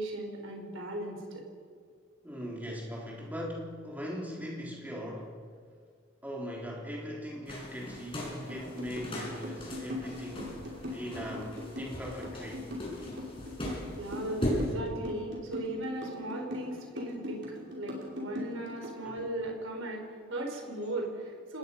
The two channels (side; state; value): both; normal; correlation 0.46